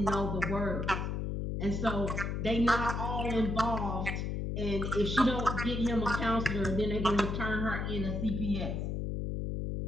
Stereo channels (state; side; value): noise; left; hum, 2 dB below the sound